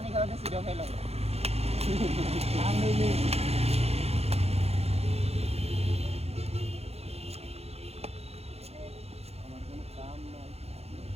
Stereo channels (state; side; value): late; left; 0.30 ms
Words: খাওয়াতে সেটাও খাইলাম আমি আমার কোনো কাম নাই